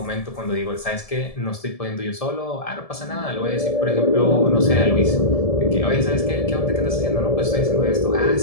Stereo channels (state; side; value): late; right; 1.7 ms